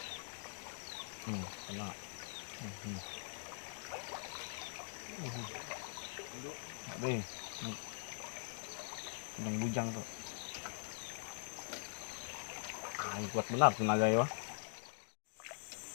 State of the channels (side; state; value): right; silent; digital silence